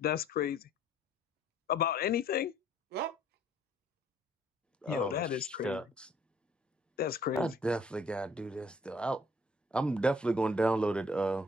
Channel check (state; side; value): normal; both; correlation 0.60